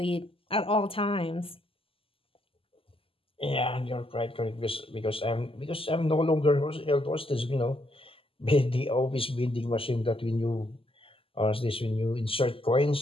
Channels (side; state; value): right; late; 0.26 ms